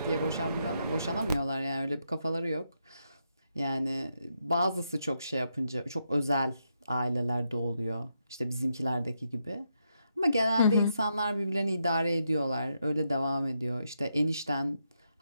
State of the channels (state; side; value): inverted; both; correlation -0.81